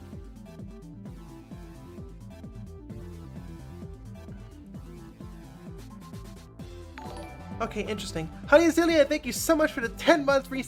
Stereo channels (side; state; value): both; identical; correlation 1.00